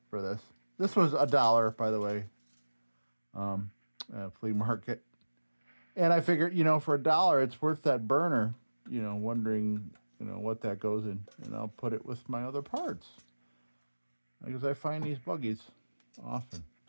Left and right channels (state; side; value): inverted; both; correlation -1.00